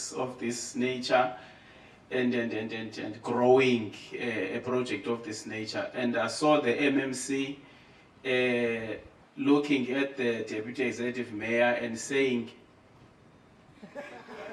of this nature and growing a project of this nature. And I saw the MMC looking at the Deputy Executive Mayor and saying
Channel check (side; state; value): both; identical; correlation 1.00